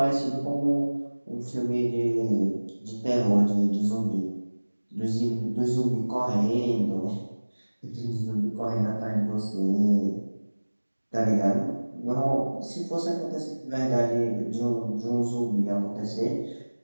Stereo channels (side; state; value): both; inverted; correlation -1.00